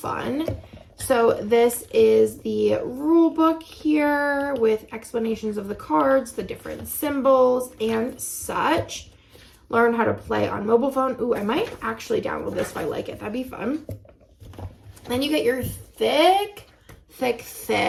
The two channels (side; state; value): both; identical; correlation 1.00